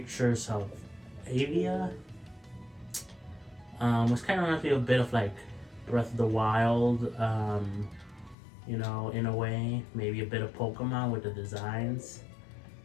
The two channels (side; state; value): right; drops out; at 8.3 s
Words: of Avia, which kind of reminds me a bit of like Breath of the Wild, in a way. Maybe a bit of Pokemon with the designs.